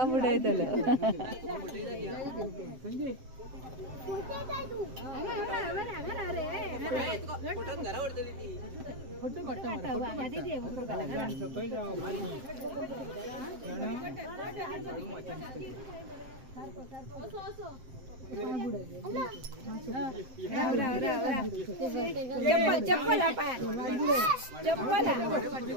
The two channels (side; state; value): left; late; 7.7 ms